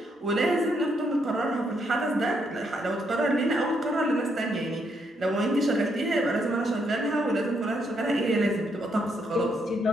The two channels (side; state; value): both; normal; correlation 0.76